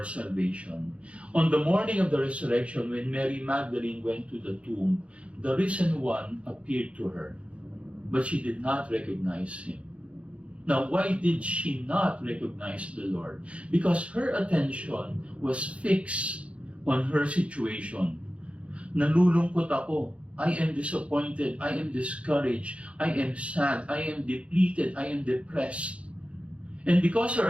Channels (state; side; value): late; left; 0.062 ms